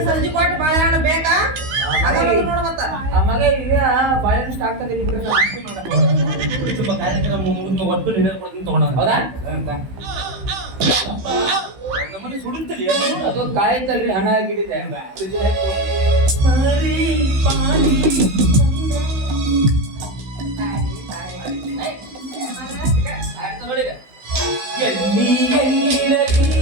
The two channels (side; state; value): left; late; 15 ms